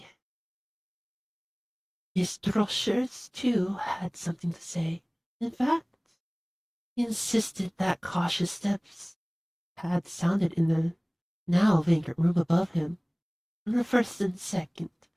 His droshers, too, had something to say. In fact, he insisted that cautious steps had sounded in the now vacant room above him on the first and second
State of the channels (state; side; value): identical; both; correlation 1.00